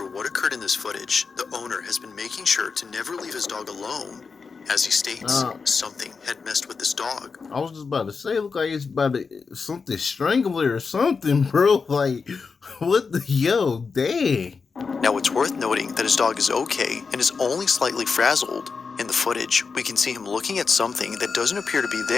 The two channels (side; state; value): right; quieter; 5.1 dB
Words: what occurred in this footage, the owner has been making sure to never leave his dog alone. As he states, something had messed with this dog. I was just about to say, look like it's about to something strangler or something, bro. Like, what the dang. Now it's worth noting that his dog is okay and is only slightly frazzled. In the footage, we can see him looking at something that doesn't appear to be